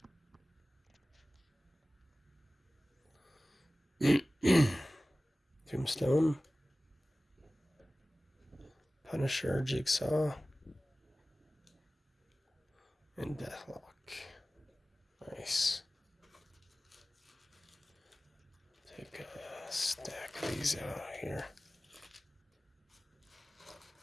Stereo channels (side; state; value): both; normal; correlation 0.97